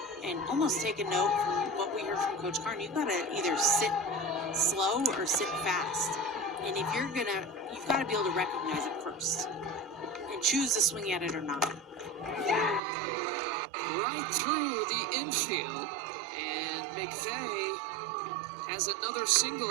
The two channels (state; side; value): drops out; left; at 12.8 s